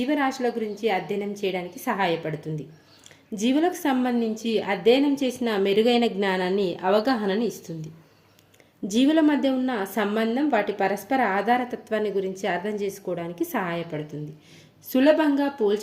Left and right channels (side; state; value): both; identical; correlation 1.00